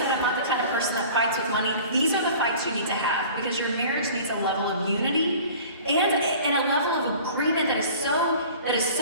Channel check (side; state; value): both; inverted; correlation -0.44